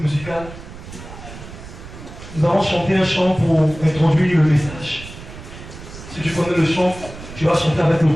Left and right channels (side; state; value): right; noise; rumble, 14 dB below the sound